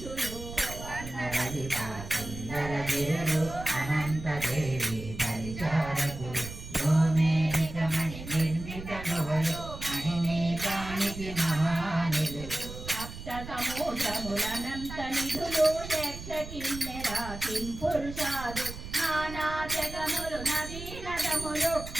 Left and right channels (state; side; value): noise; right; rumble, 11 dB below the sound